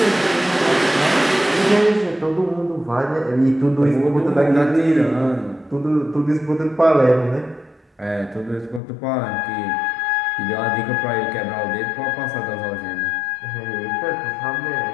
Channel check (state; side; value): drops out; right; at 8.8 s